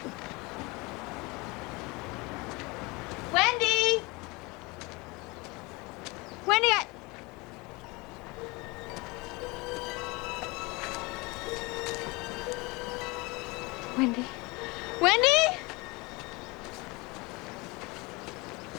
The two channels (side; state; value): right; quieter; 25.1 dB